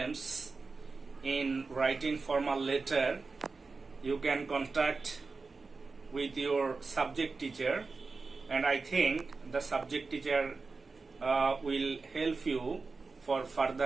in writing formal letter, you can contact with your subject teacher, and I think the subject teacher will help you for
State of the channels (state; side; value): quieter; left; 4.2 dB